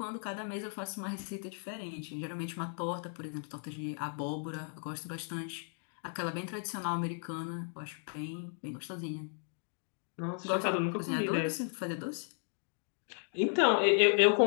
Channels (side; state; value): right; silent; 54 dB below the other